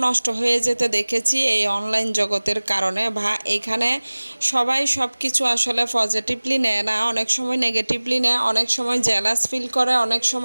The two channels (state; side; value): inverted; both; correlation -1.00